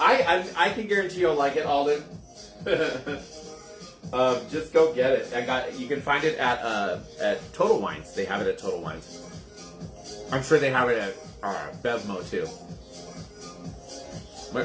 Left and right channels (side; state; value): both; identical; correlation 1.00